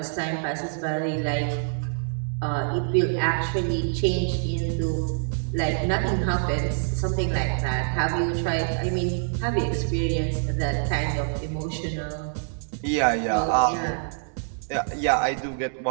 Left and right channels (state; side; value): silent; left; digital silence